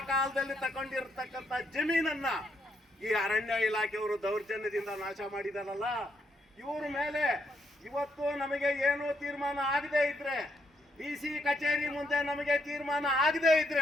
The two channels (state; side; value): normal; both; correlation 0.76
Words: ಕಾಲದಲ್ಲಿ ತಗೊಂಡಿರ್ತಕ್ಕಂಥ ಜಮೀನನ್ನ ಈ ಅರಣ್ಯ ಇಲಾಖೆಯವರು ದೌರ್ಜನ್ಯದಿಂದ ನಾಶ ಮಾಡಿದಾರಲ್ಲ, ಇವ್ರ ಮೇಲೆ ಇವತ್ತು ನಮಗೆ ಏನು ತೀರ್ಮಾನ ಆಗದೆ ಇದ್ರೆ, DC ಕಚೇರಿ ಮುಂದೆ ನಮಗೆ ತೀರ್ಮಾನ ಆಗದೆ